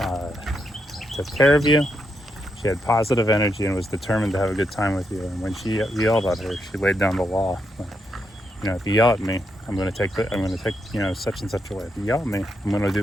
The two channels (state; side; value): normal; both; correlation 0.81